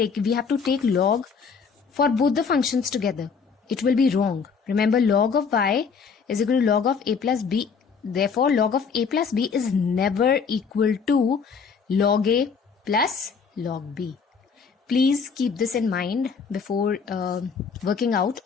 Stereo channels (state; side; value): quieter; right; 5.7 dB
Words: have to take log for both the functions together. It will be wrong. Remember, log of y is equal to log of a plus b. Therefore, log of a plus b is never equal to log a plus log b. Please keep this in mind before working out